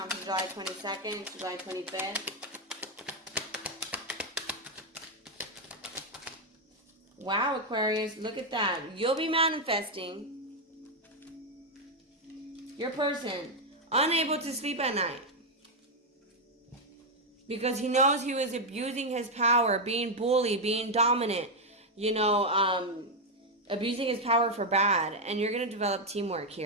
from July 22nd to July 25th? Wow, Aquarius, look at that. You'll be manifesting your person unable to sleep at night because he knows he was abusing his power, being bullied, being dominant, abusing his power for bad. And you're going to develop teamwork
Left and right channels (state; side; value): normal; both; correlation 0.02